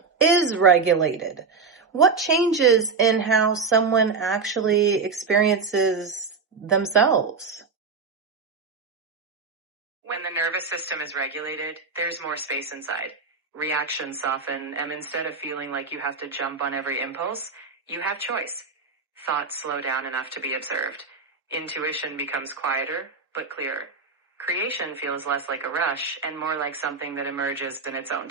is regulated, what changes in how someone actually experiences themselves? When the nervous system is regulated, there's more space inside. Reactions soften, and instead of feeling like you have to jump on every impulse, you have choice. Thoughts slow down enough to be observed. Intuition becomes quieter, but clearer. Creation feels less like a rush and more like something that emerges in its own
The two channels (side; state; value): left; quieter; 4.8 dB